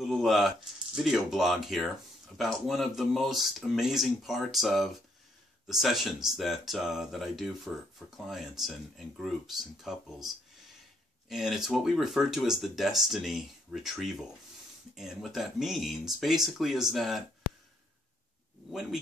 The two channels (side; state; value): both; normal; correlation 0.72